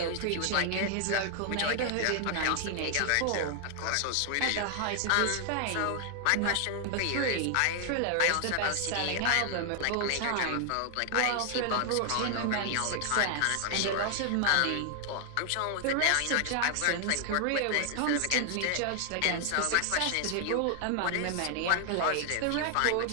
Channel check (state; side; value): different; both; correlation 0.00